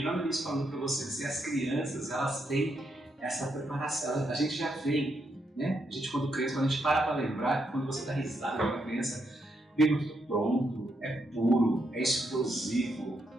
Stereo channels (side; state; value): both; normal; correlation 0.79